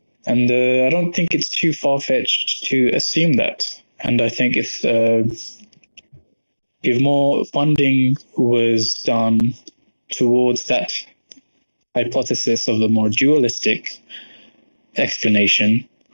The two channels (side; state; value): both; inverted; correlation -1.00